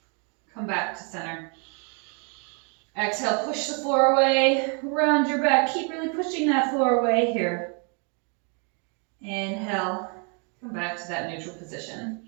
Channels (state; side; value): quieter; left; 37.6 dB